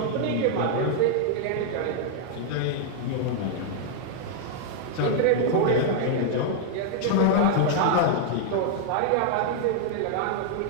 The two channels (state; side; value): different; both; correlation -0.01